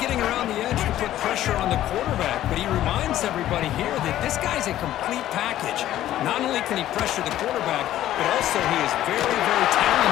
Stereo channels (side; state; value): right; quieter; 13.1 dB